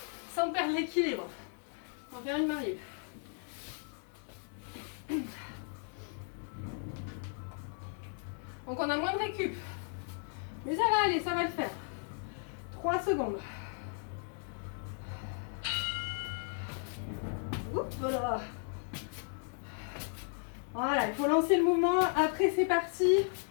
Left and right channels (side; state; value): right; silent; 54 dB below the other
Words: Sans perdre l'équilibre. On va faire une main libre. Donc on a moins de récup. Mais ça va aller, ça va le faire. 3 secondes. Oups, voilà. Voilà, il faut lancer le mouvement. Après, c'est parti.